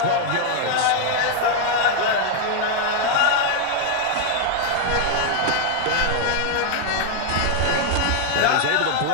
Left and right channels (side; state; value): both; different; correlation 0.00